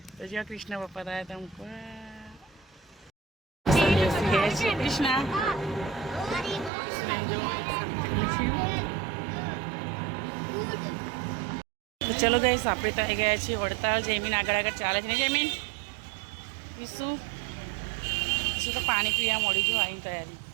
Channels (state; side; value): drops out; left; at 6.7 s